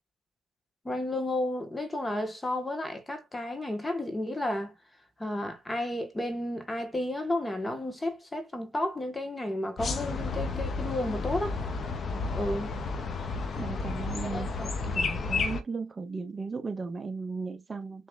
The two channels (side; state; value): both; normal; correlation 0.82